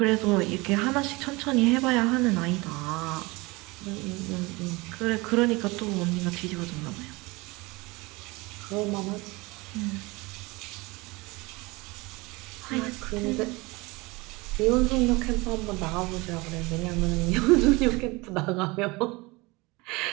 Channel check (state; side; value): quieter; left; 24.0 dB